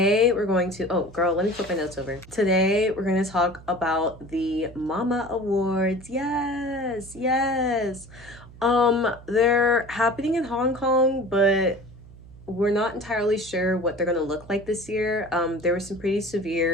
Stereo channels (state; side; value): noise; right; hum, 20 dB below the sound